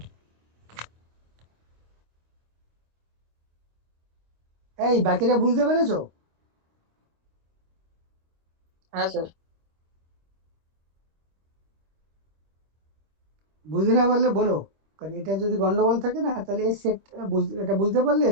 এই বাকিটা বুঝতে পেরেছো? হ্যাঁ স্যার। বুঝতে না পারলে বলো, কারণ এটা যদি গন্ডগোল থাকে না তাহলে এর সেট এটা বুঝতে পারলে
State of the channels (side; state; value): left; late; 25 ms